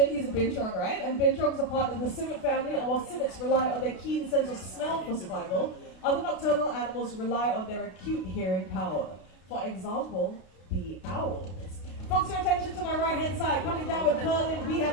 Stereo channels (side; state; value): right; late; 32 ms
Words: he's a Binturong, right? And Binturong's a part of the civet family, and while civets rely on their keen sense of smell for survival, other nocturnal animals rely on their acute hearing power. For example, the owls. Focus your attention to my right-hand side. Coming down with Perlin, we